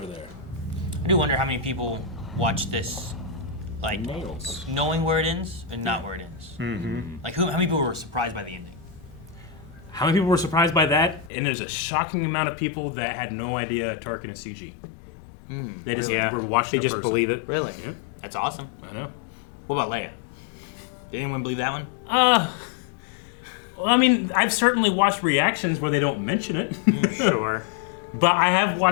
there. I do wonder how many people watch this, like, Nails. knowing where it ends and not where it ends. Mm-hmm. Like, how many people were surprised by the ending? How many people were surprised by that? And there's a shocking amount of people that had no idea Tarkin is CG. They just were watching They just person. believe it. Really? Yeah. That's awesome. I know. What about Leia? Did anyone believe that one? Well, I mean, I've certainly watched reactions where they don't mention it. Sure. But I have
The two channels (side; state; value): right; drops out; at 11.3 s